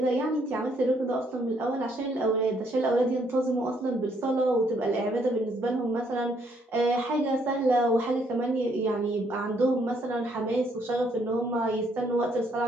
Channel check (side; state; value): both; normal; correlation 0.69